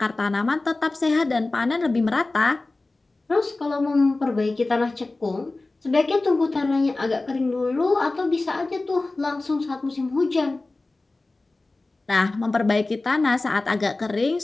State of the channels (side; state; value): right; quieter; 3.2 dB